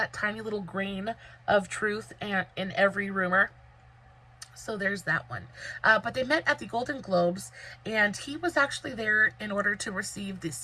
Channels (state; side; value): identical; both; correlation 1.00